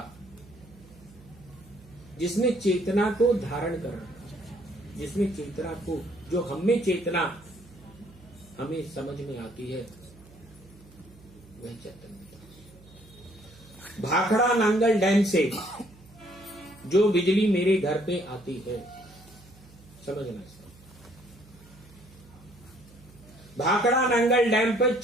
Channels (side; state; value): right; noise; hum, 23 dB below the sound